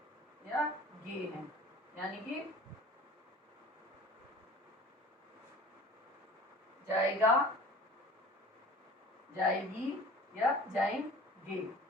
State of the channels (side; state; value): both; normal; correlation 0.43